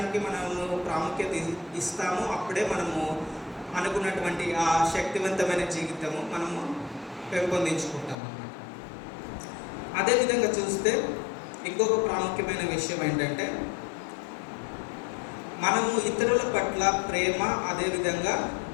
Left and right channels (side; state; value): right; drops out; at 8.2 s